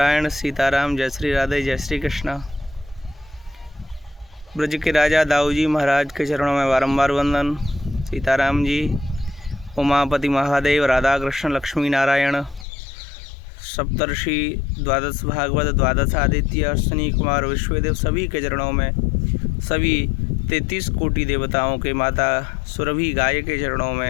सीताराम, जय श्री राधे, जय श्री कृष्णा। ब्रज के राजा दाऊ जी महाराज के चरणों में बारंबार वंदन। सीताराम जी, उमापति महादेव, राधा कृष्ण, लक्ष्मी नारायण, सप्तर्षि, द्वादश भागवत, द्वादश आदित्य, अश्विनी कुमार, विश्वदेव सभी के चरणों में, सभी 33 कोटि देवताओं के माता सुरभि गाय के चरणों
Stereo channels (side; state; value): right; drops out; at 12.7 s